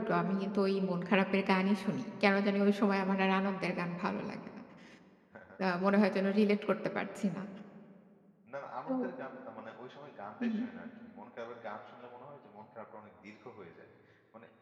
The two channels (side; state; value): both; identical; correlation 1.00